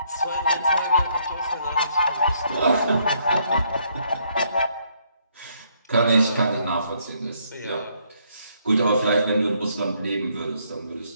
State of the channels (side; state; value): both; inverted; correlation -0.70